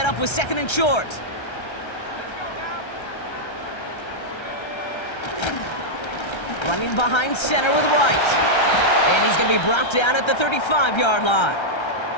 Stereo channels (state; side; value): late; right; 1.3 ms